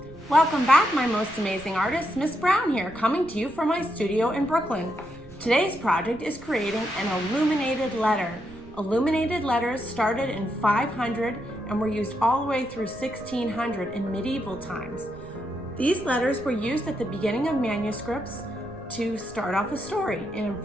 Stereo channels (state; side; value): noise; right; rumble, 19 dB below the sound